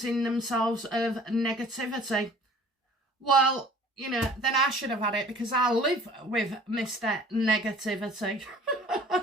themselves of negativity. Well, then I should have had it because I live with Mr. Negativity.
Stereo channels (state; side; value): normal; both; correlation 0.49